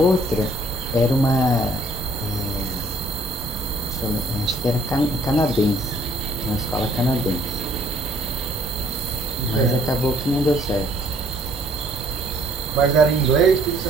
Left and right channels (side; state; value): both; normal; correlation 0.61